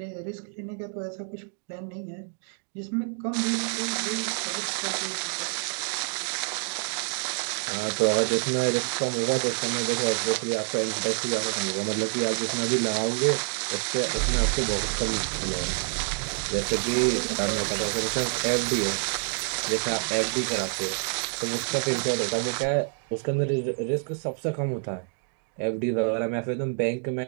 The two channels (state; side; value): silent; left; 60 dB below the other